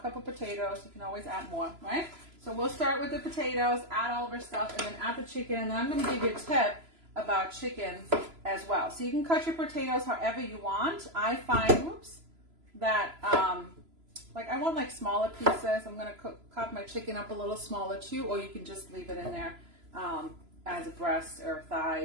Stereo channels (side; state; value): left; late; 3.0 ms